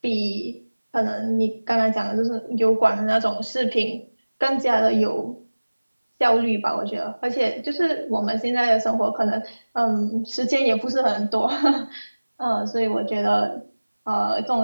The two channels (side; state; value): both; inverted; correlation -1.00